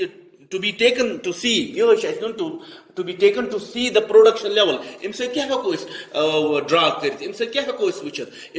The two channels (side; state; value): both; identical; correlation 1.00